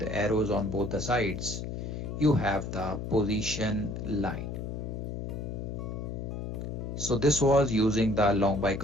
arrows on both the sides, you have the position line. So this was using the long by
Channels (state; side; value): noise; left; hum, 5 dB below the sound